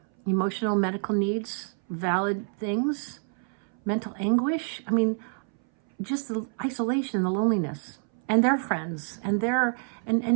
emotional, medical needs, valid things, mental anguish. Just the isolation, the loneliness, and their friends, and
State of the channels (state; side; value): silent; left; 59 dB below the other